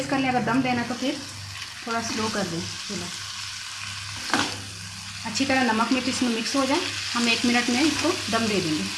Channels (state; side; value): identical; both; correlation 1.00